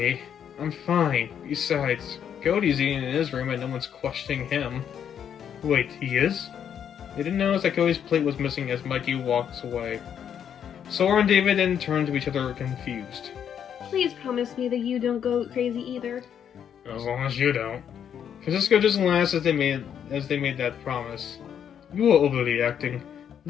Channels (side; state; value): right; quieter; 8.7 dB